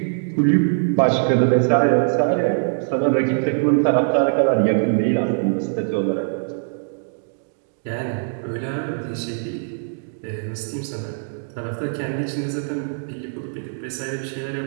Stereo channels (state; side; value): silent; left; digital silence